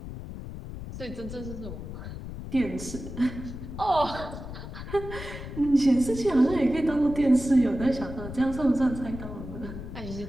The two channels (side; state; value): left; noise; rumble, 10 dB below the sound